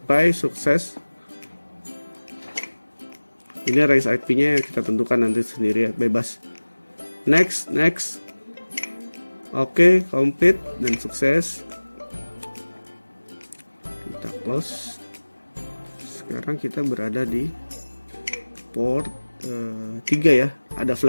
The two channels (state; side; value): inverted; both; correlation -1.00